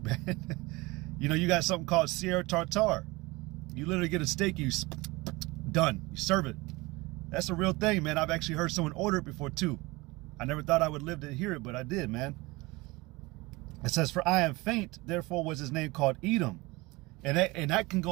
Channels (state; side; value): quieter; left; 22.7 dB